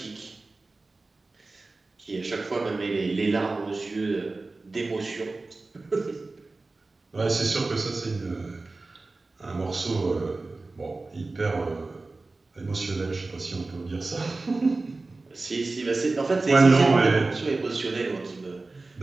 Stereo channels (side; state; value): left; quieter; 3.4 dB